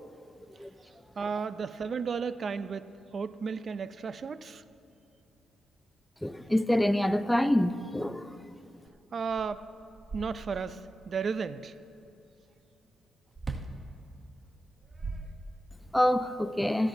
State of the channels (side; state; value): both; normal; correlation 0.93